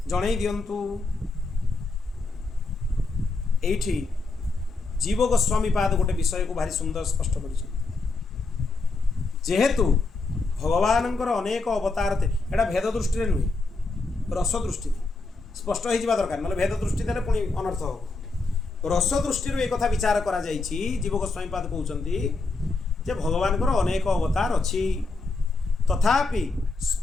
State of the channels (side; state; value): right; quieter; 3.6 dB